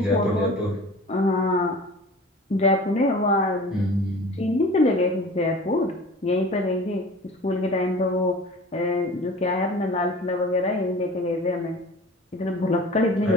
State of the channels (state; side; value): normal; both; correlation 0.41